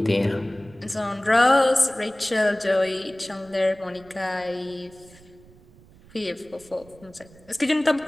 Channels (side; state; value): right; noise; rumble, 25 dB below the sound